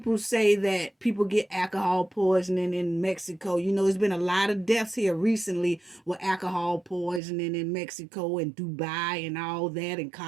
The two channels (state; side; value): drops out; left; at 7.2 s